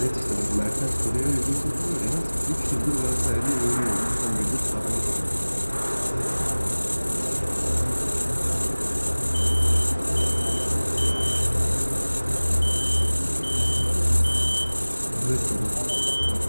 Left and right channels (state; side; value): inverted; both; correlation -1.00